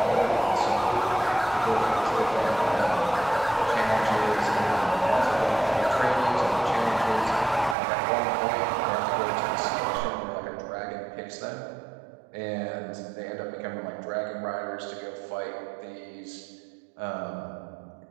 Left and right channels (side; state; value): left; drops out; at 7.8 s